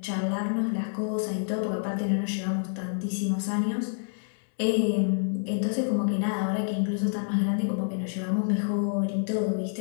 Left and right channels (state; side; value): silent; right; 59 dB below the other